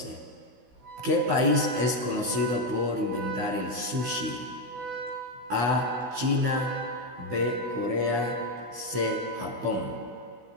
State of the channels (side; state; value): left; late; 16 ms